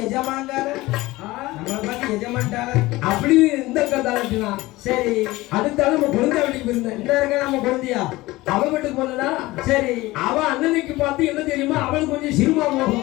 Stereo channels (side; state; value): right; quieter; 19.3 dB